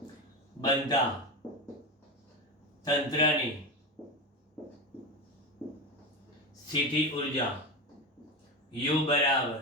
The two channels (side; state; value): both; normal; correlation 0.20